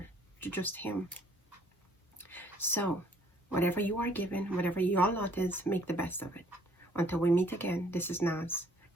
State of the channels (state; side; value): normal; both; correlation 0.61